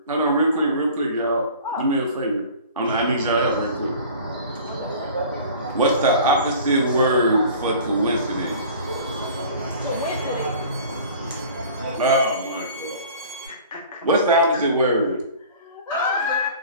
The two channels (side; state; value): both; inverted; correlation -0.44